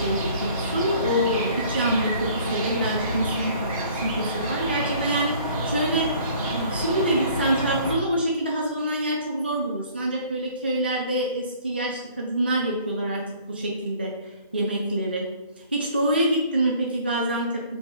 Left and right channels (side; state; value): both; inverted; correlation -0.53